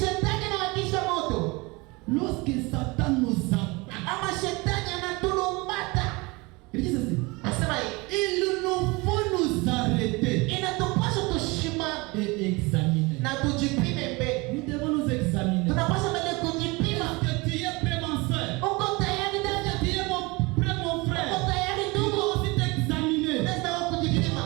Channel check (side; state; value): left; quieter; 25.2 dB